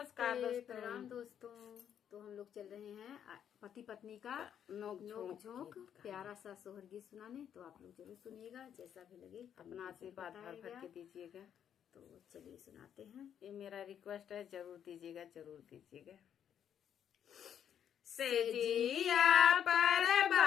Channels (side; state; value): right; quieter; 9.1 dB